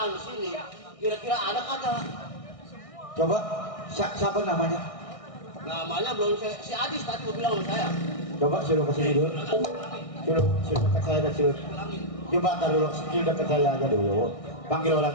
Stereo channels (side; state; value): right; late; 1.6 ms